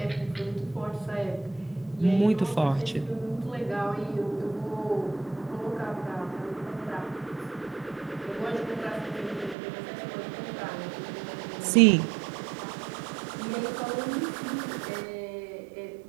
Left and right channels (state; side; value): drops out; left; at 9.6 s